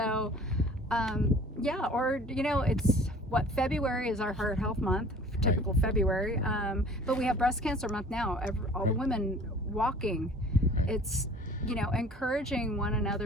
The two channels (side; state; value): both; normal; correlation 0.48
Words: yeah, or you know, it's February is our Heart Health Month, typical February, but we have Breast Cancer Month now. All the women walking. It's, you know, encouraging one